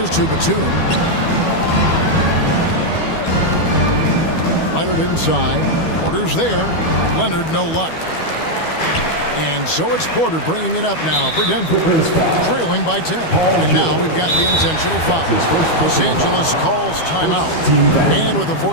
to Batum. Leonard inside. Porter's there. Leonard no luck. And so it's Porter bringing it up now for Denver, trailing by 10. And now we've got the intentional foul. Los Angeles calls timeout. And with the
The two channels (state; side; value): late; right; 12 ms